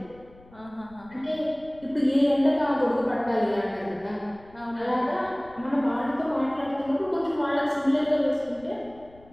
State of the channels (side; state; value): left; noise; rumble, 25 dB below the sound